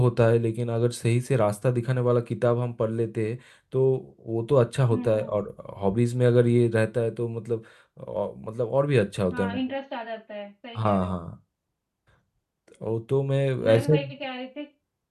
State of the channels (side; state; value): both; identical; correlation 1.00